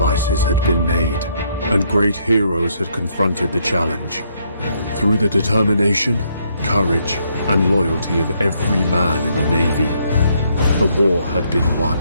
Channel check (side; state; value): both; inverted; correlation -0.71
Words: had been made, and great heroes had confronted the challenge. Through the determination, courage, and loyalty of every man in the Navy, the war had been won.